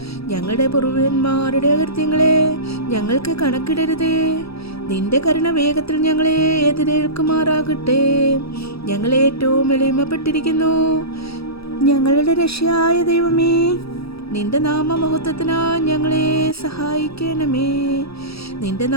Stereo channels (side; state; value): right; late; 0.77 ms